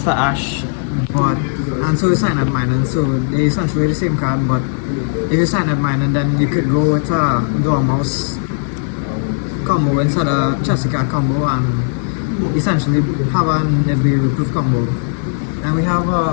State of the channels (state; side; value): silent; right; 56 dB below the other